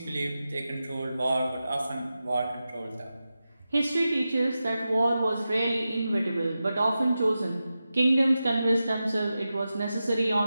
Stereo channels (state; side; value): inverted; both; correlation -0.92